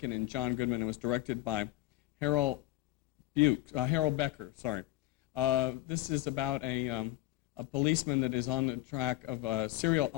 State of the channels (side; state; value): right; quieter; 17.2 dB